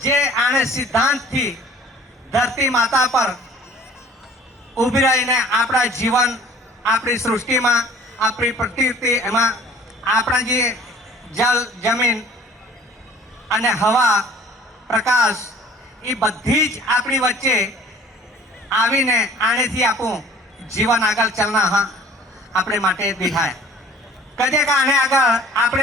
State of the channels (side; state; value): both; normal; correlation 0.49